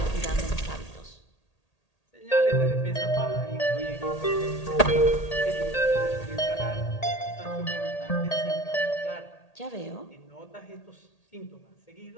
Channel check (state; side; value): late; right; 1.8 ms